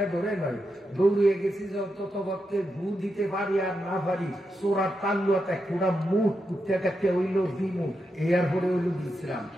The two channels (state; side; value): normal; both; correlation 0.86